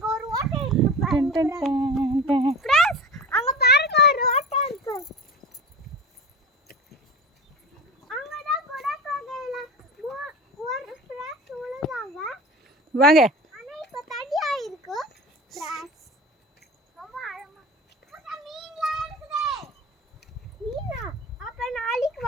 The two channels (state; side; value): normal; both; correlation 0.33